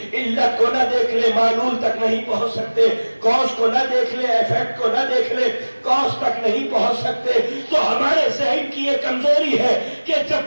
علت کو نہ دیکھ لے معلول تک نہیں پہنچ سکتے، کاز کو نہ دیکھ لے ایفیکٹ کو نہ دیکھ لے کاز تک نہیں پہنچ سکتے. تو ہمارے ذہن کی یہ کمزوری ہے کہ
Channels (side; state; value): both; inverted; correlation -1.00